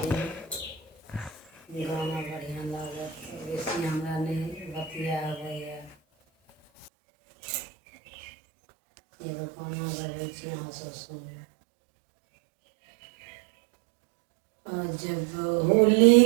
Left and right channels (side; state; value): left; drops out; at 6.9 s